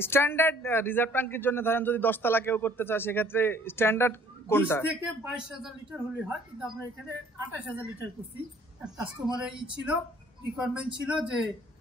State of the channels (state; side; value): normal; both; correlation 0.57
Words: স্ট্যান্ডার্ড রিজার্ভ ট্যাঙ্কের জন্য ধরেন যদি 10 তলা কেউ করতে চায় সেক্ষেত্রে স্ট্যান্ডার্ড কোনটা? 20 থেকে 22000 লিটার হলে হয়, কিন্তু আমরা এখানে 28000 লিটার করছি। কাস্টমারের ছিল, রিকোয়ারমেন্ট ছিল যে